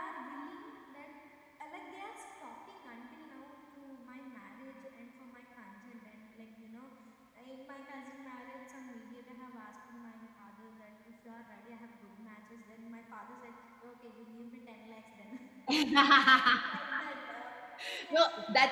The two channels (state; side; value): identical; both; correlation 1.00